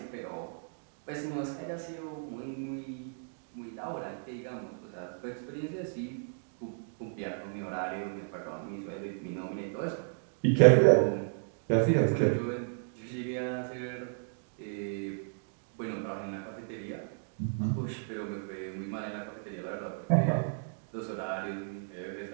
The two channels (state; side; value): silent; left; digital silence